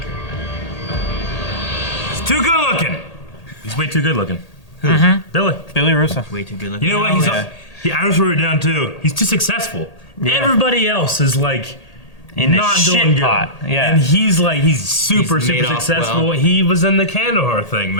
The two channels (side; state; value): right; late; 1.8 ms